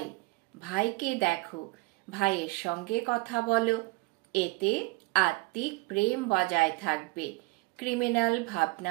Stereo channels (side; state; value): left; quieter; 24.4 dB